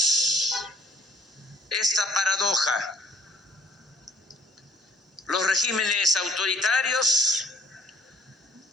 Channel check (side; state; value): both; normal; correlation 0.59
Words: esta paradoja. Los regímenes autoritarios